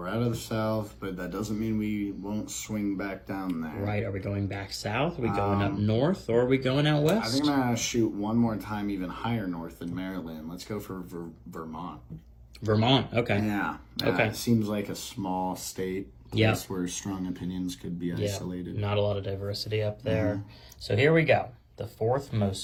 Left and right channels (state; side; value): identical; both; correlation 1.00